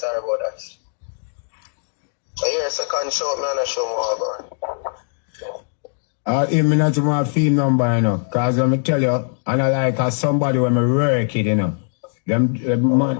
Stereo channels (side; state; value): right; silent; digital silence